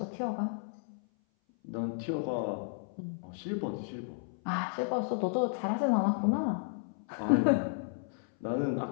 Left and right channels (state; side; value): silent; right; 56 dB below the other